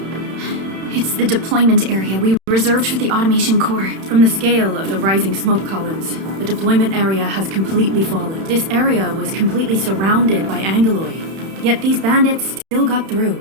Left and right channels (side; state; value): left; late; 31 ms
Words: It's the deployment area we reserved for the automation core. From the scale of the rising smoke columns, the deployment area has completely fallen. This area was completely surrounded by Aggeloi, yet these bandits still got